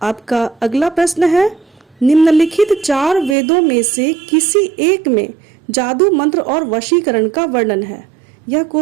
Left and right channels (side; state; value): left; drops out; at 3.4 s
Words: आपका अगला प्रश्न है, निम्नलिखित 4 वेदों में से किसी एक में जादू मंत्र और वशीकरण का वर्णन है। यह